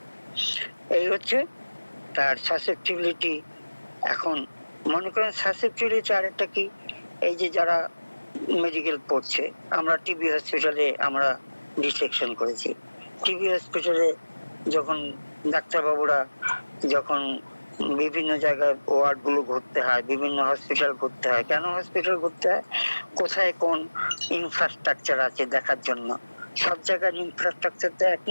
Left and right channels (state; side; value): inverted; both; correlation -1.00